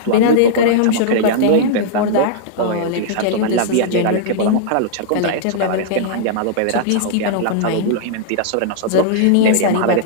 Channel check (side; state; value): both; different; correlation -0.02